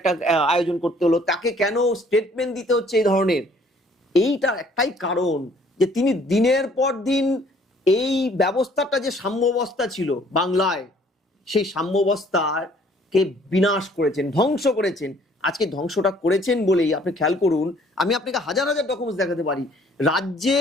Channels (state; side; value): normal; both; correlation 0.59